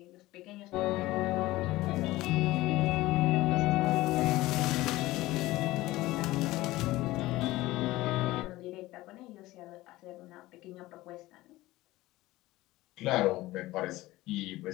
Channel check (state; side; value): quieter; right; 18.0 dB